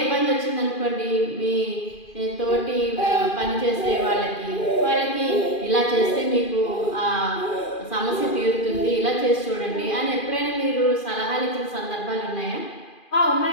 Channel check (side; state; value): right; late; 2.4 ms